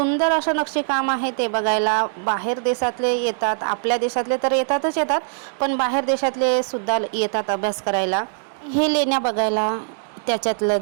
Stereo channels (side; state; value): left; silent; 63 dB below the other